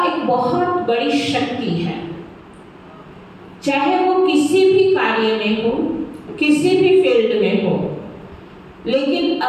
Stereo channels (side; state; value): both; identical; correlation 1.00